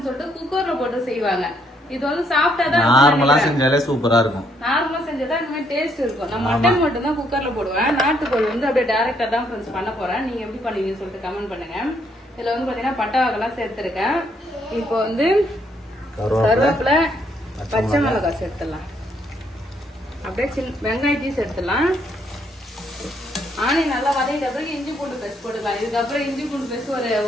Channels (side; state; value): both; normal; correlation 0.71